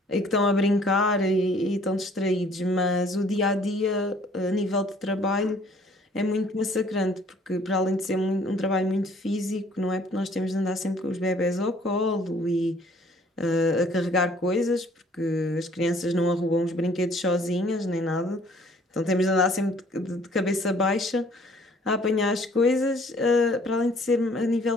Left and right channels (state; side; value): normal; both; correlation 0.58